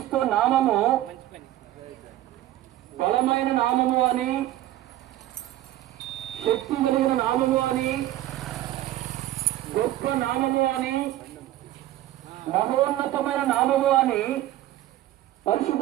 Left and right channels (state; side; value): quieter; left; 14.5 dB